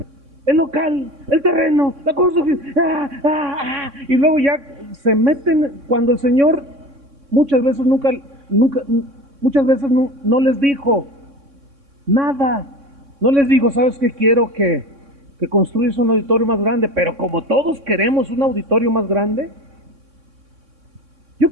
El local, el terreno, la construcción, y luego ya se meten cuando el Señor muchas veces muchas veces no les dijo nada. No les digo, ¿sabes qué? Quiero que construyas un auditorio más grande, pero como todos queremos un auditorio más grande, yo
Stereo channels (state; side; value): late; left; 3.6 ms